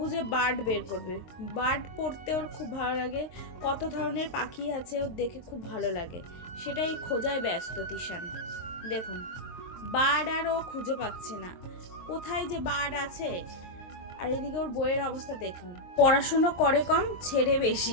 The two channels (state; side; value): late; right; 23 ms